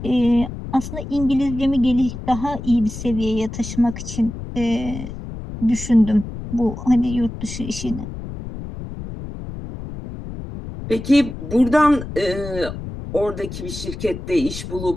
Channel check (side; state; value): left; noise; rumble, 9 dB below the sound